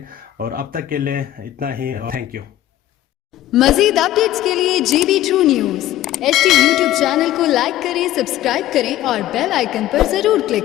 और अब तक के लिए इतना ही, थैंक यू। मज़ीद अपडेट्स के लिए GB2 news HD YouTube channel को लाइक करें, सब्सक्राइब करें और बेल आइकन पर ज़रूर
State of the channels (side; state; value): right; quieter; 13.8 dB